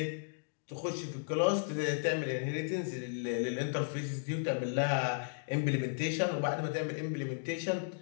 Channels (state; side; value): silent; right; digital silence